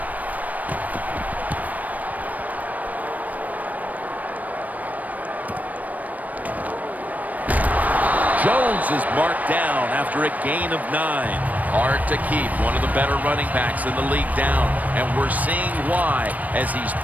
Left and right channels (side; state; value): left; late; 0.075 ms